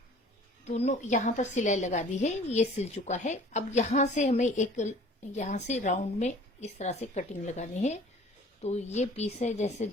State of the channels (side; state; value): both; normal; correlation 0.49